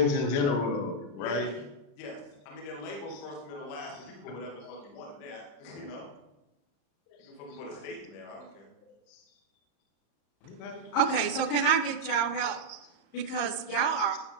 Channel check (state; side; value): late; right; 34 ms